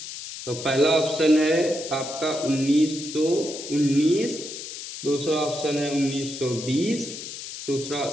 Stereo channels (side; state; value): left; noise; hiss, 10 dB below the sound